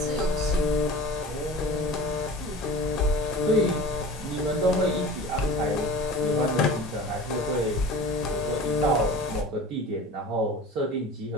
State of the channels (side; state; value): both; normal; correlation 0.38